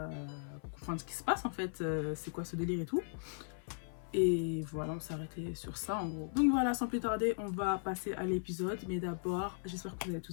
comprendre ce qui se passe en fait, c'est quoi ce délire et tout. Et voilà, on s'est arrêté sur ça en gros. Donc voilà, sans plus tarder, on va passer à l'épisode, mais d'abord, j'espère que vous allez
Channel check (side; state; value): right; silent; 53 dB below the other